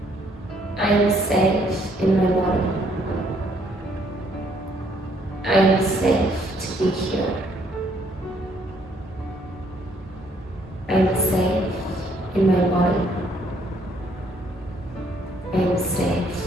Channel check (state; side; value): normal; both; correlation 0.66